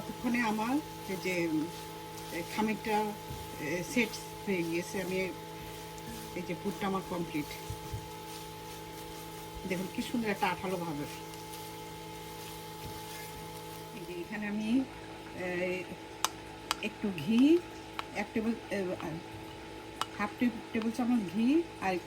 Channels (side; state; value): both; identical; correlation 1.00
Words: আমার এই যে খামিরটা সেট হয়ে গিয়েছে। আমি এই যে পুরটা আমার কমপ্লিট। দেখুন কি সুন্দর একটা আঠালো ভাবে। এই যে এখানে আমি একটু ঘি, হাফ টেবিল চামচ ঘি আর